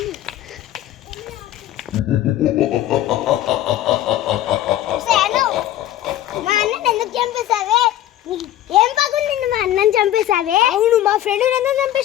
మా అన్నని ఎందుకు చంపేశావే? ఏం పగుంది మా అన్నని చంపేశావే? అవును, మా ఫ్రెండ్ ఎందుకు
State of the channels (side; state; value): right; quieter; 13.2 dB